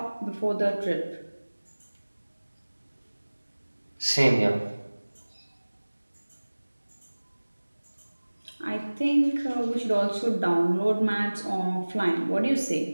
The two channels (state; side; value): inverted; both; correlation -1.00